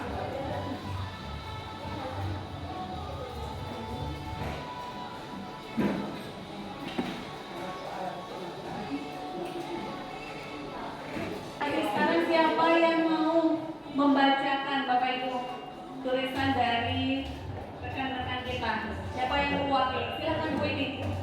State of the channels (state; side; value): identical; both; correlation 1.00